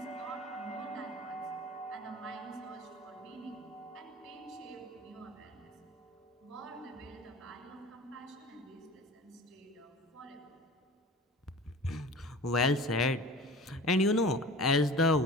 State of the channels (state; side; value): normal; both; correlation 0.39